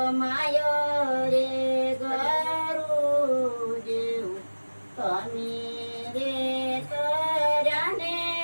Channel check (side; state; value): both; inverted; correlation -1.00